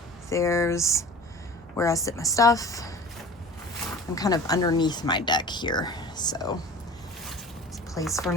there's where I sit my stuff. I'm kind of underneath my deck here, so place for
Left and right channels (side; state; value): both; normal; correlation 0.39